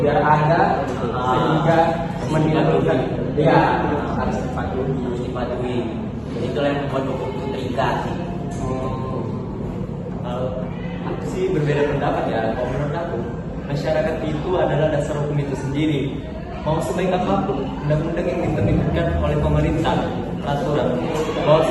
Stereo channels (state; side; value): identical; both; correlation 1.00